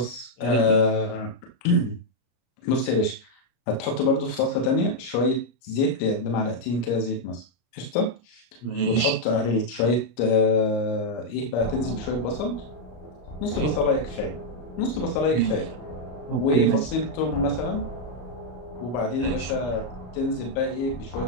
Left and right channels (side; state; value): right; late; 34 ms